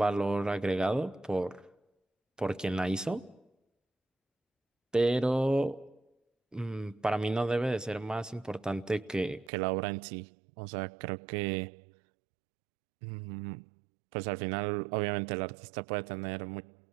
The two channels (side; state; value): left; drops out; at 9.5 s